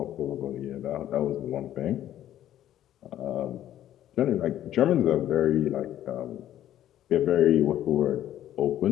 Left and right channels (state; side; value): quieter; right; 12.1 dB